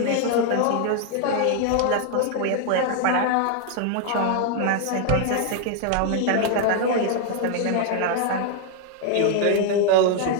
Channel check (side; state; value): both; different; correlation 0.00